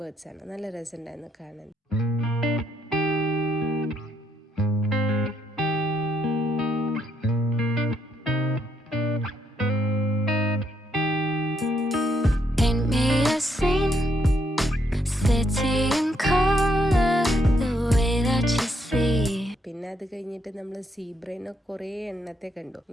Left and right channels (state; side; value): normal; both; correlation 0.75